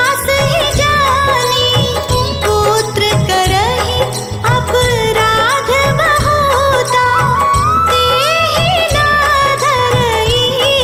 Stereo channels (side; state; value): both; identical; correlation 1.00